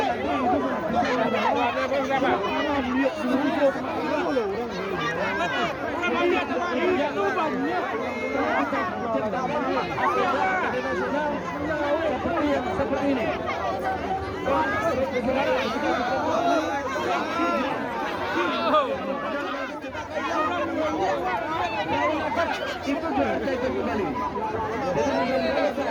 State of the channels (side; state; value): both; identical; correlation 1.00